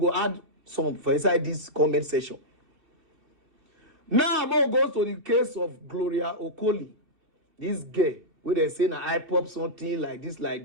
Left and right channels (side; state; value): left; late; 2.9 ms